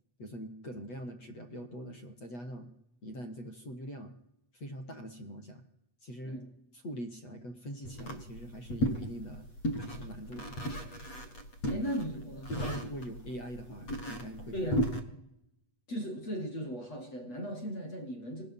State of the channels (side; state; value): right; late; 8.2 ms